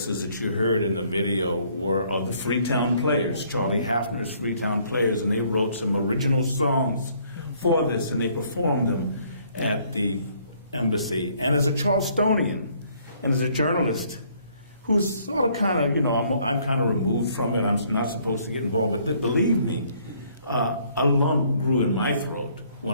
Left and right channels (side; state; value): both; inverted; correlation -0.64